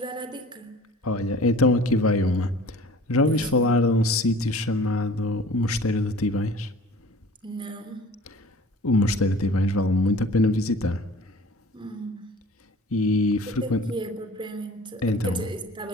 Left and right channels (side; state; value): both; normal; correlation 0.45